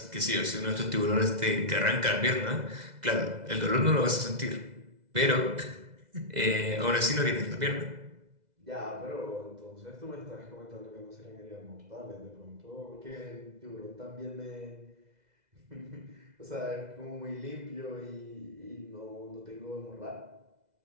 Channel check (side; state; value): left; late; 2.0 ms